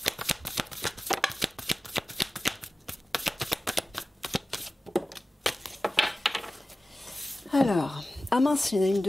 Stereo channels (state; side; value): normal; both; correlation 0.97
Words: Alors, ah mince, il y en a une